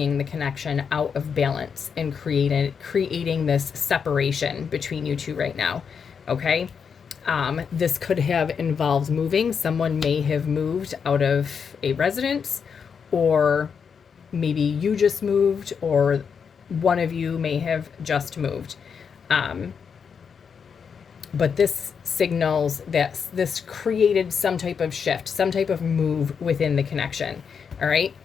the connection out of balance and creating this separation between you two right now, okay? This could have involved moving. Someone may have moved out of a residence, or maybe you just moved, or one of you may have just moved. But this signals that this created some type of shift, some type of move within the connection. All right.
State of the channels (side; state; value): right; quieter; 6.5 dB